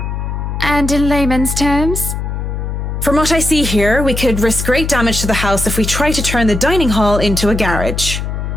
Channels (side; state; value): left; noise; hum, 4 dB below the sound